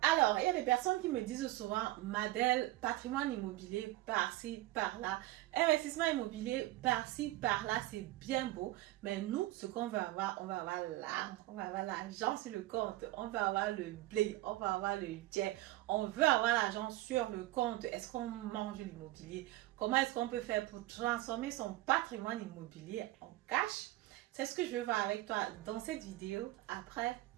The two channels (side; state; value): left; quieter; 17.4 dB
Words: Alors, il y a des personnes qui me disent souvent, Madel, patrimoine immobilier par-ci, par-là, investissement immobilier par-ci, par-là, c'est bien beau. Mais nous, ce qu'on veut avoir, on va avoir l'argent, on va avoir l'argent sur le compte, on va avoir le blé, on va avoir le jet, on veut avoir l'argent sur le compte. Est-ce qu'on mange l'immobilier? Comment est-ce qu'on peut faire pour transformer son patrimoine immobilier en cash? C'est ce que je veux voir avec toi dans cette vidéo après